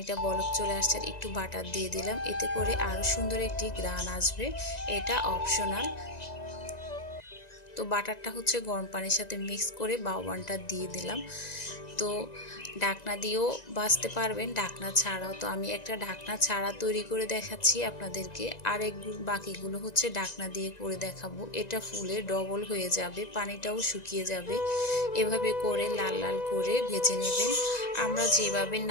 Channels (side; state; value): right; late; 1.9 ms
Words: বলক চলে আসছে। আর একটু বাটার দিয়ে দিলাম, এতে করে আরও সুন্দর একটি ঘ্রাণ আসবে। এটা অপশনাল। তো বাটারটা হচ্ছে গরম পানির সাথে মিক্স করে বাউবানটা দিয়ে দিলাম। তো ঢাকনা দিয়েও ভাজতে পারবেন, ঢাকনা ছাড়াও। তো আমি একটা ঢাকনা ছাড়া তৈরি করে দেখাচ্ছি আপনাদেরকে। বাকিগুলো হচ্ছে ঢাকনা দিয়ে করে দেখাবো। এটা ফুলে ডবল হয়ে যাবে, পানিটাও শুকিয়ে যাবে। এভাবে করে লাল লাল করে ভেজে নেবেন। আমরা যেভাবে